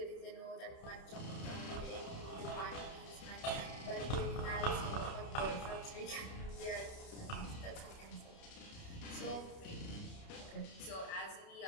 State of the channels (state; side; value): late; right; 30 ms